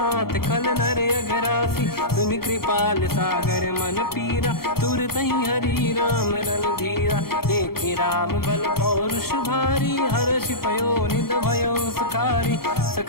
खल नर अघरासी सुनि कृपाल सागर मन पीरा तुरत ही हरि राम रन धीरा देखि राम बल पौरुष भारी हर्ष पयो निध भयो सुखारी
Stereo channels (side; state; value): right; late; 0.94 ms